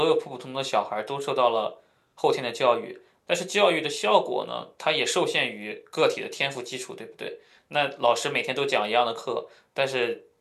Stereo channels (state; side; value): identical; both; correlation 1.00